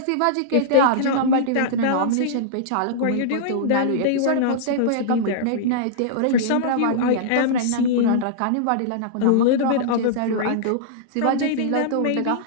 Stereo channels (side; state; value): both; different; correlation -0.02